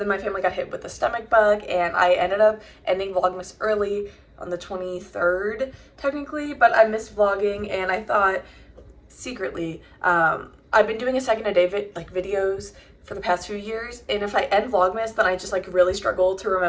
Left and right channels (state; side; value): identical; both; correlation 1.00